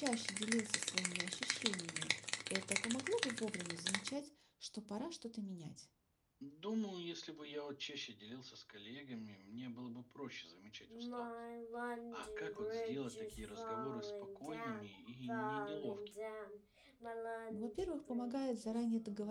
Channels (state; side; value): identical; both; correlation 1.00